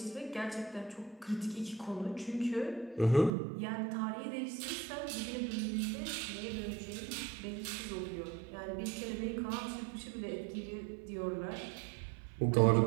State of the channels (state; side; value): drops out; left; at 3.3 s